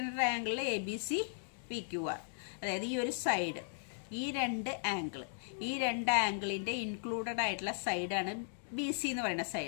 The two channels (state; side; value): silent; right; digital silence